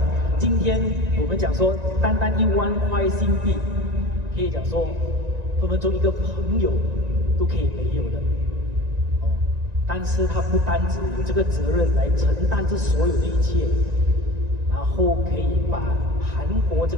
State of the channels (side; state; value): left; late; 1.9 ms